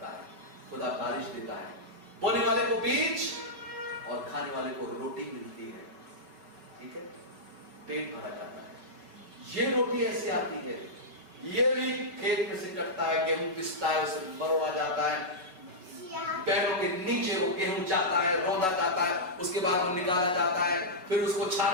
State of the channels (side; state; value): left; late; 5.3 ms